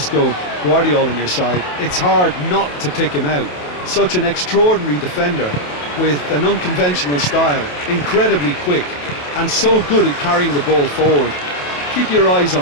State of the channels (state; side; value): late; right; 28 ms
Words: Guardiola, on your side, it's hard not to pick him out. Such an extraordinary defender with an unconventional style, incredibly quick, and so good at carrying the ball forward. Keep your eyes